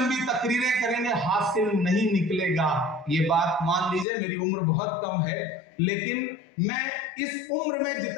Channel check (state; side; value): drops out; right; at 4.0 s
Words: तकरीरें करेंगे, हासिल नहीं निकलेगा। ये बात मान लीजिए, मेरी उम्र बहुत कम है, लेकिन मैं इस उम्र में